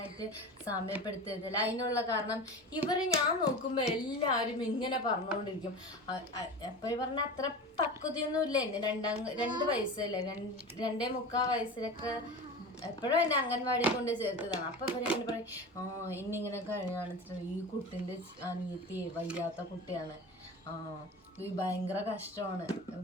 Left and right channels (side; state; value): both; normal; correlation 0.30